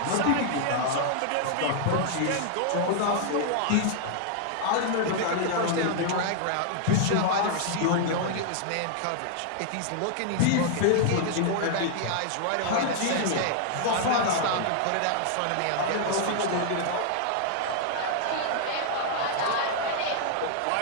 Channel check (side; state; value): both; different; correlation -0.01